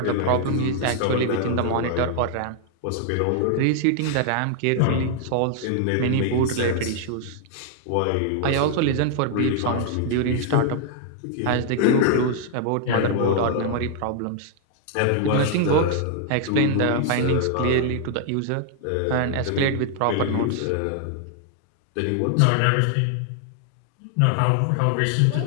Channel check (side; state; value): both; different; correlation 0.00